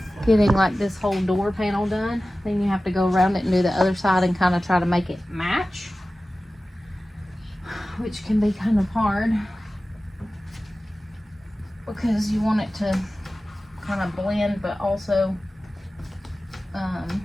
getting like this whole door panel done, then you have to go around it and do the other side and kind of try to make it match, which can be kind of hard because you want it to kind of blend, but also,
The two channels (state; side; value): normal; both; correlation 0.96